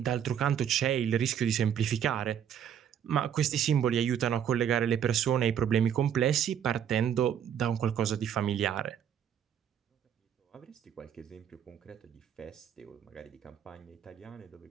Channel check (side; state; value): left; quieter; 9.1 dB